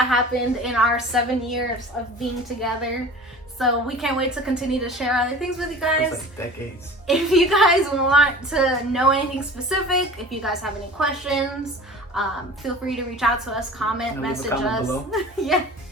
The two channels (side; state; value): both; normal; correlation 0.40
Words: happened in our 7 years of being together. So we can't wait to continue to share other things with you guys. It's like decades. If you guys want to know anything specific, if you guys have any questions, feel free to reach out to us, comment, message us. Yeah.